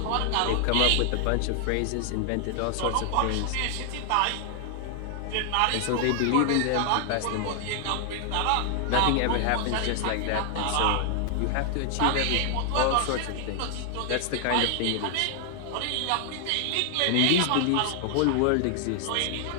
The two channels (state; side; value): different; both; correlation 0.00